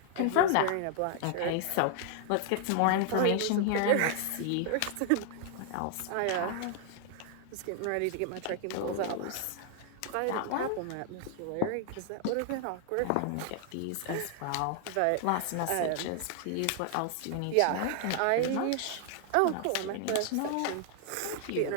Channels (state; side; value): different; both; correlation 0.00